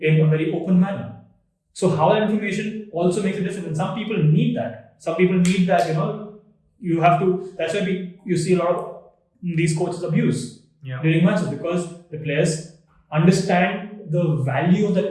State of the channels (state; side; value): identical; both; correlation 1.00